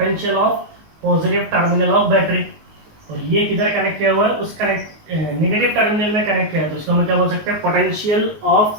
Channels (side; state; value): left; late; 19 ms